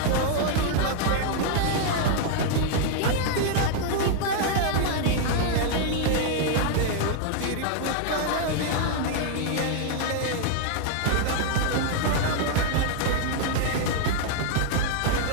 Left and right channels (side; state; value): both; different; correlation 0.00